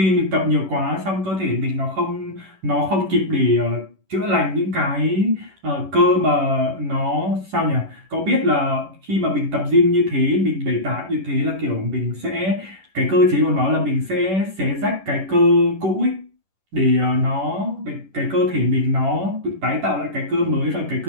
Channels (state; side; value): late; left; 11 ms